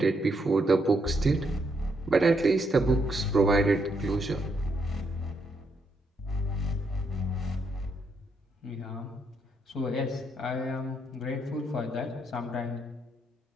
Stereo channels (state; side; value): normal; both; correlation 0.76